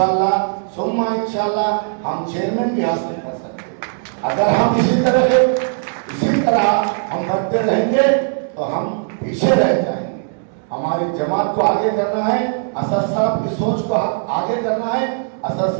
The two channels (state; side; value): silent; left; digital silence